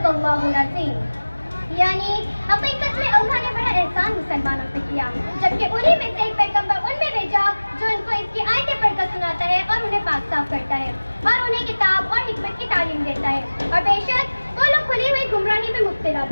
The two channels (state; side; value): inverted; both; correlation -1.00